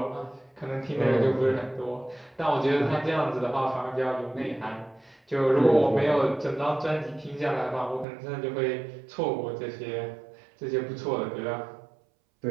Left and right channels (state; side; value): drops out; left; at 8.1 s